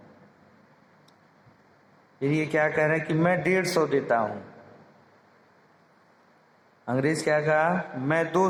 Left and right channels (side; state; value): both; identical; correlation 1.00